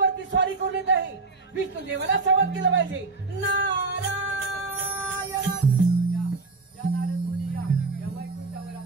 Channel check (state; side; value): quieter; left; 3.9 dB